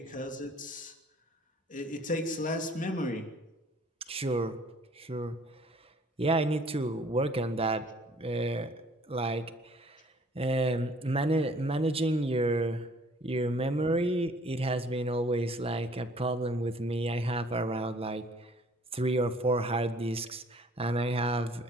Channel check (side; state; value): both; normal; correlation 0.56